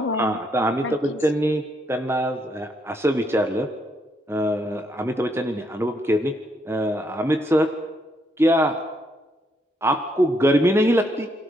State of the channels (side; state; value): both; normal; correlation 0.75